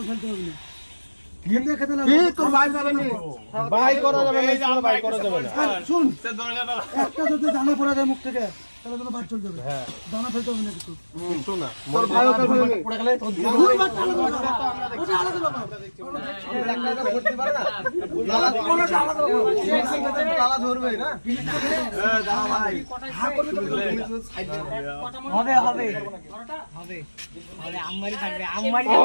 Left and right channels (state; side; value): inverted; both; correlation -1.00